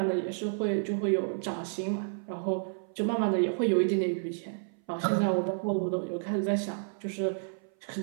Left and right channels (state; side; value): silent; left; 56 dB below the other